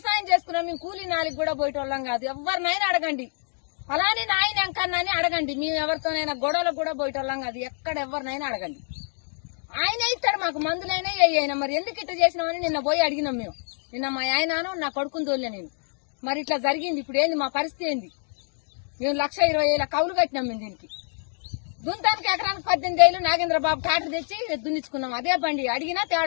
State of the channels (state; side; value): silent; right; 61 dB below the other